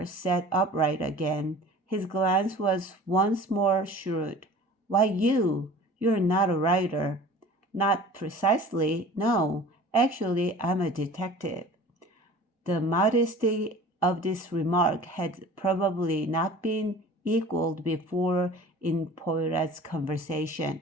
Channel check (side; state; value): both; normal; correlation 0.43